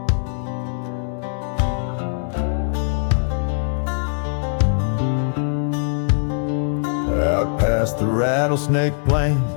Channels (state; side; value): silent; right; 60 dB below the other